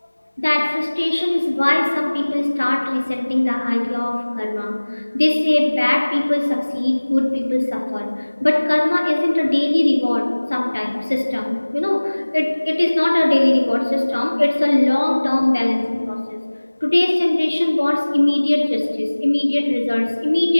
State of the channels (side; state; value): both; inverted; correlation -1.00